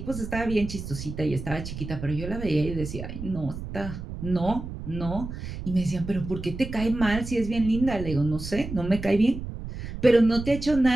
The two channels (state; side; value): noise; right; rumble, 8 dB below the sound